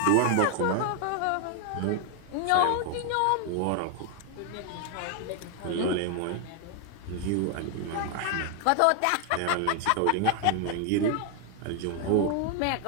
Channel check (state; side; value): different; both; correlation 0.00